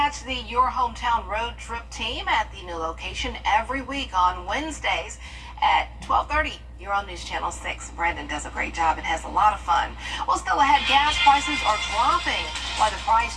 the Your Hometown road trip team at the new location every week on Wednesdays at 12:30. You're on News Channel 6. Brandon does a great job and has a lot of fun. Well, still ahead, gas prices are dropping. Why the price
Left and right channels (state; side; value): identical; both; correlation 1.00